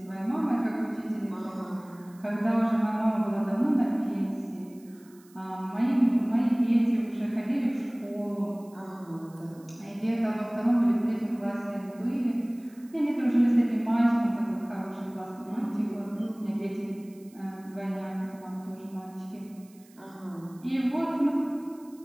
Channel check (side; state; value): right; noise; hiss, 28 dB below the sound